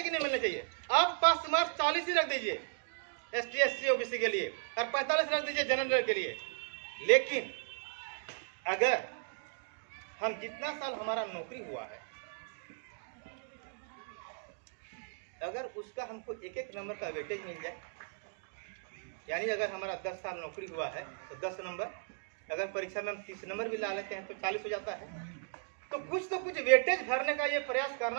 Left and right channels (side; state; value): left; silent; digital silence